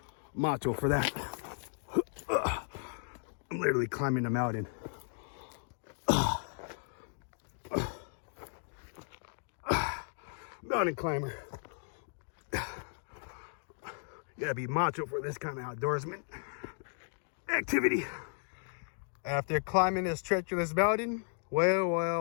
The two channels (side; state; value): right; silent; 54 dB below the other